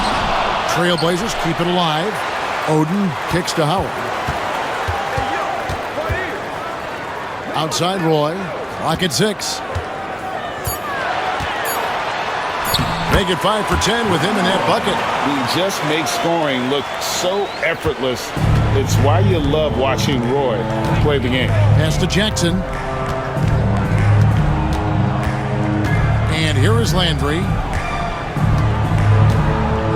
Trailblazers keep it alive. Oden kicks to Howard. Outside Roy. Clock at 6. Make it 5 for 10 with him in that bucket. He just makes scoring look so effortless. It's why you love watching Roy play the game. Pass to Jackson. And here is Landry.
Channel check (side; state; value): both; identical; correlation 1.00